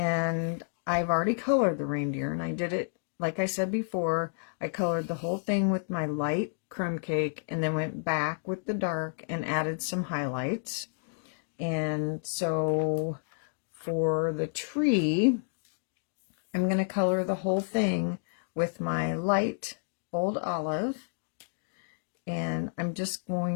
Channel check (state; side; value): silent; right; digital silence